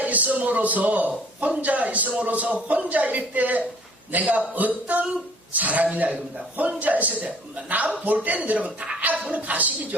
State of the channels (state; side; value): normal; both; correlation 0.55